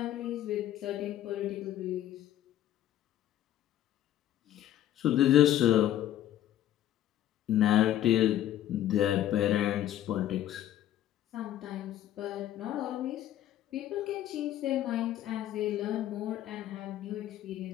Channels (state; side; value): quieter; right; 12.3 dB